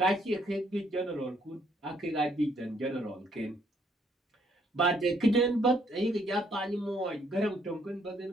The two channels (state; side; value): normal; both; correlation 0.68